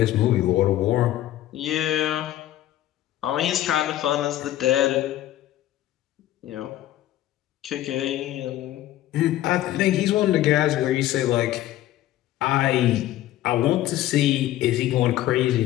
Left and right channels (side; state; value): right; quieter; 13.8 dB